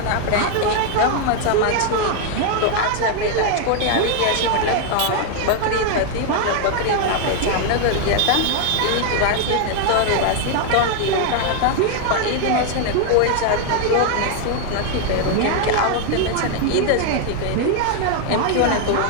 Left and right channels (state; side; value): different; both; correlation 0.00